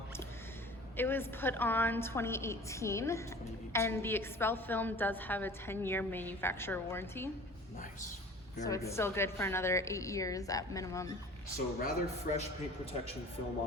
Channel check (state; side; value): normal; both; correlation 0.44